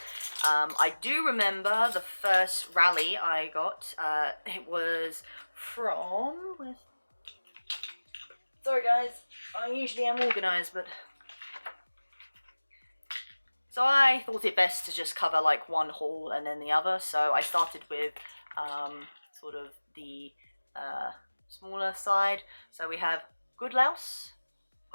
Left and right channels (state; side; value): inverted; both; correlation -1.00